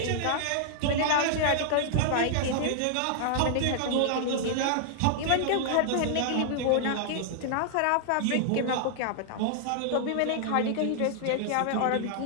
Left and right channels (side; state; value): both; different; correlation -0.01